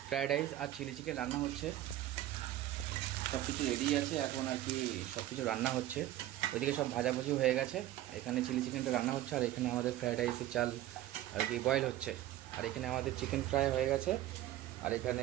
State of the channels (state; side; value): quieter; left; 13.9 dB